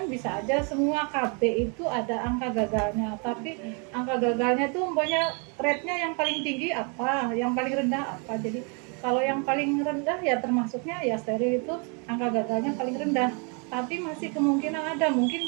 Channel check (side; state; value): left; quieter; 35.8 dB